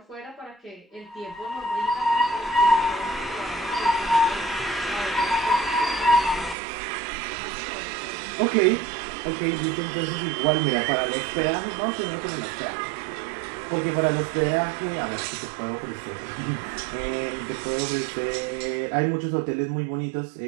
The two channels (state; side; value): drops out; left; at 6.6 s